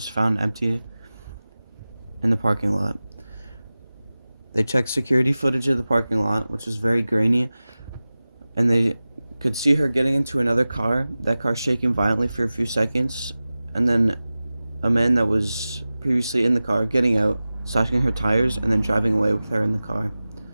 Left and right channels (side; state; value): both; inverted; correlation -0.96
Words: found empty in the parking lot. They checked security footage of the parking lot, which was very grainy, and they could see her getting into another car, that car shaking violently for a few seconds, and then a man that was previously in the car getting out, slashing her tires, and then driving away with her in the car.